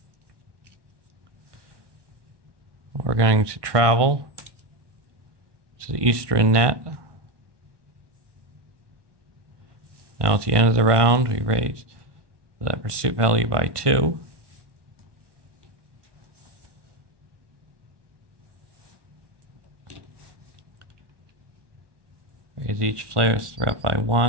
We're going to travel to the Eastern Net. Now at the end of the round, we raise the pursuit value by 2. Raise each player's threat by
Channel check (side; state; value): left; late; 1.2 ms